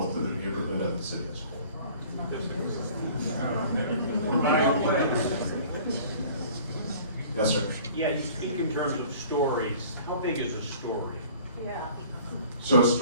to the neighborhood and the city as a whole. Yes, sir. Yeah, you speak in terms of stories. How big is a story? Yeah. So a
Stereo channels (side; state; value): both; inverted; correlation -0.49